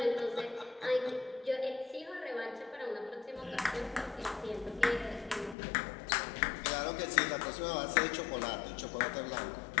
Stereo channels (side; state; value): right; drops out; at 5.6 s